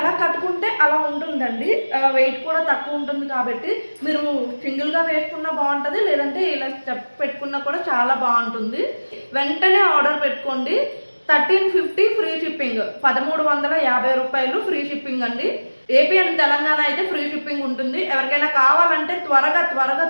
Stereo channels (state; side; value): inverted; both; correlation -1.00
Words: కట్టుకుంటే అలా ఉంటుందండి. వెయిట్ కూడా తక్కువ ఉంటుంది కాబట్టి మీరు సింగిల్గా వేసుకున్నా బాగుంటుంది, లేదంటే ఇలా స్టెప్ పెట్టుకున్నా కూడా చాలా బాగుంటుంది. వెంటనే ఆర్డర్ పెట్టుకోండి. 1350 ఫ్రీ షిప్పింగ్, 1350 రూపాయలు ఫ్రీ షిప్పింగ్ అండి. ఏపీ అండ్ తెలంగాణ అయితే ఫ్రీ షిప్పింగ్ ఉంటుంది. ఎవరికైనా కావాలంటే